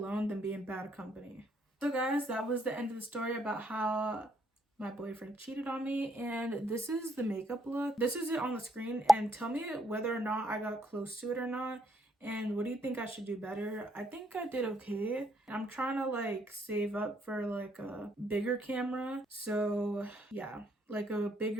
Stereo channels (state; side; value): normal; both; correlation 0.71